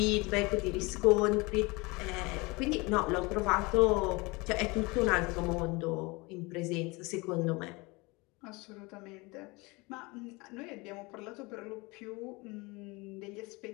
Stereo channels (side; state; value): right; quieter; 25.4 dB